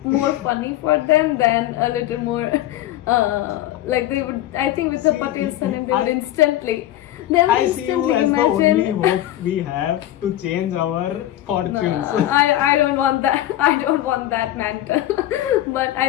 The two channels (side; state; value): right; quieter; 13.9 dB